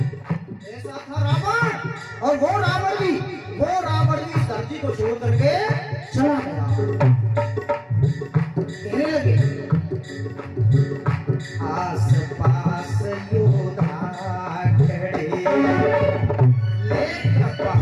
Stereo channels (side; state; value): both; identical; correlation 1.00